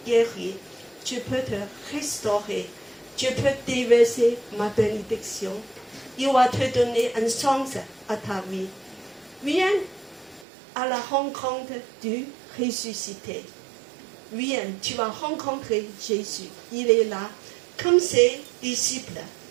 guérir, je peux te restaurer, je peux déverser ma bénédiction. Il va te donner un sens à ta vie. Viens à la rencontre du ressuscité. Viens, tu vas rencontrer Jésus. Il est là, comme ses disciples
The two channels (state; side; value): drops out; left; at 10.5 s